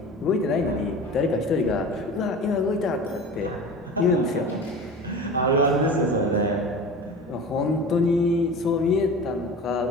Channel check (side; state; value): both; normal; correlation 0.35